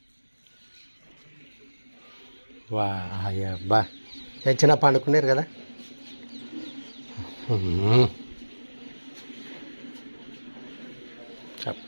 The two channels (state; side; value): inverted; both; correlation -1.00